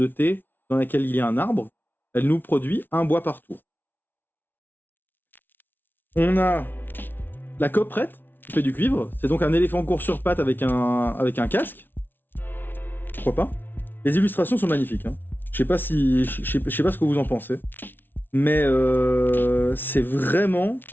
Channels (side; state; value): right; late; 0.096 ms